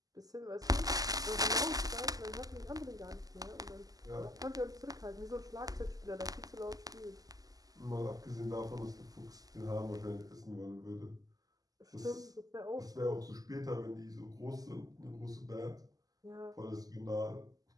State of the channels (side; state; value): left; late; 0.17 ms